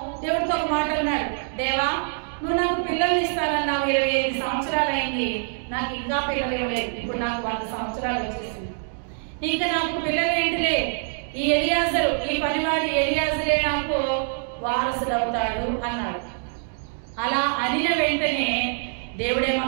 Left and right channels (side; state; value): left; silent; 62 dB below the other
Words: దేవుడితో ఒక మాట అన్నాడు, దేవా నువ్వు నాకు పిల్లల్ని ఇస్తానన్నావు, 25 సంవత్సరాలు అయింది, నాకు ఇంకా పిల్లలు ఇవ్వలేదు, ఇప్పుడు నాకు 100 సంవత్సరాలు వచ్చేసింది, ఇంకా నాకు పిల్లలు ఏంటిలే, ఈ ఎలియాజరు, ఈ పనివాడి ఎలియాజరే నాకు వారసుడు అవుతాడు అన్నాడు. అలా అనిన వెంటనే